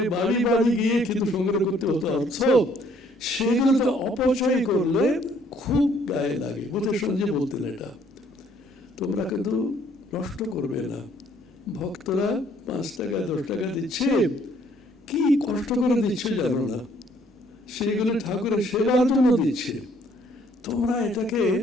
বাড়ি বাড়ি গিয়ে কিন্তু সংগ্রহ করতে হতো অর্থ, সেগুলো তো অপচয় করলে খুব গায়ে লাগে। বুঝের সঙ্গে বলতেন এটা, তোমরা কিন্তু নষ্ট করবে না, ভক্তরা 5 টাকা 10 টাকা দিচ্ছে, কি কষ্ট করে দিচ্ছে জানো না, সেইগুলো ঠাকুরের সেবার জন্য দিচ্ছে, তোমরা এটাকে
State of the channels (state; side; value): normal; both; correlation 0.63